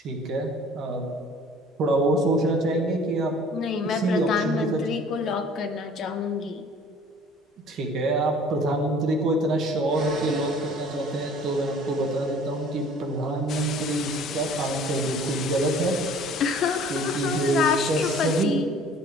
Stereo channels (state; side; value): normal; both; correlation 0.51